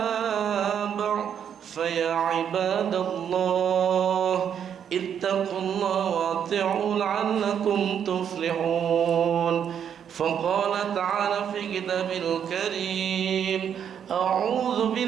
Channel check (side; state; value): left; quieter; 8.5 dB